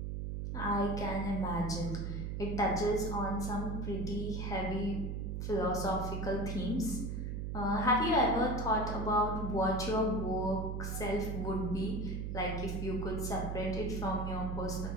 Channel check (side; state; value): right; noise; hum, 3 dB below the sound